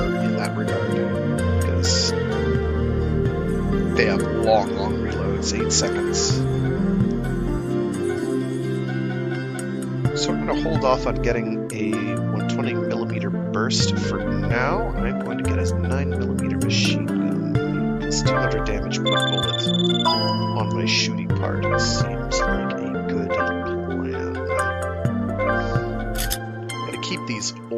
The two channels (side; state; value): both; identical; correlation 1.00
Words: in that regard, because they have long reloads, 8 seconds. So I'm going to hold off on getting a 120mm burst for now. I'm going to get a 9mm machine gun. It's 200 damage per bullet on my shooting part. It seems like a good plan. I'm going to keep these